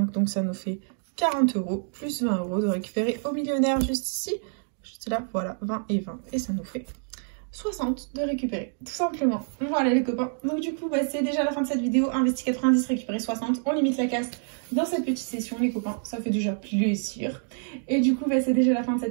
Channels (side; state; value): left; silent; digital silence